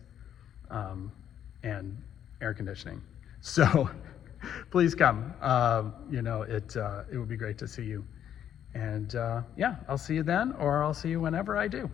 and air conditioning. So please come. It would be great to see you. And I'll see you then, or I'll see you whenever I do.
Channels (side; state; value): right; quieter; 9.9 dB